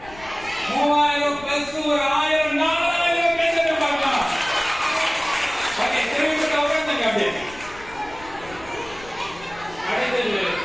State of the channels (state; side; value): noise; left; rumble, 20 dB below the sound